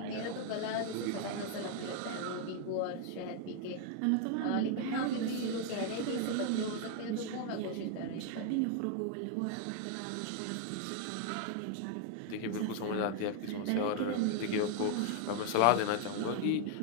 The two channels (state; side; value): different; both; correlation 0.00